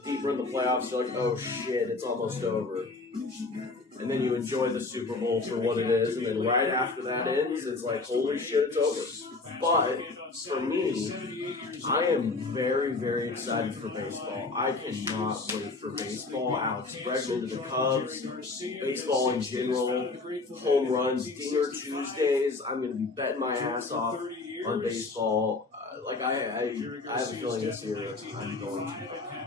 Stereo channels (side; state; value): right; quieter; 3.7 dB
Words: deeper in the playoffs, you're like, oh shit, it's almost over. And then you enjoy the Super Bowl for what it is. And then right after that ends, it's like, holy shit, it's over. But for me, I am very, very excited for baseball. I cannot wait for baseball. Alex Bregman to the Cubs, baseball in general, home runs, Dinger Tuesdays. I'm going to be betting my ass off on baseball. I have a feeling this year I'm going to.